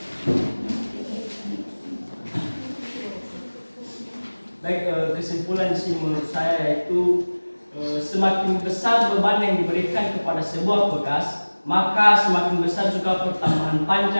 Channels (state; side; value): inverted; both; correlation -1.00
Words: Baik, kesimpulan sih menurut saya yaitu semakin besar beban yang diberikan kepada sebuah pegas, maka semakin besar juga pertambahan